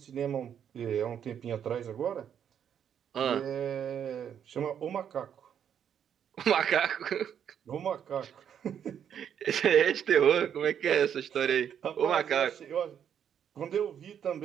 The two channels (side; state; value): left; quieter; 8.7 dB